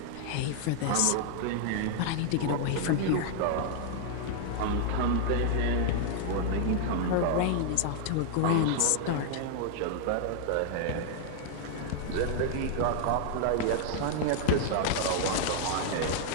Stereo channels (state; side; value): different; both; correlation -0.01